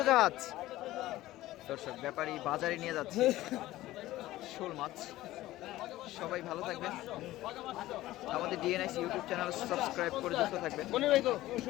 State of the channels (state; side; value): quieter; right; 16.2 dB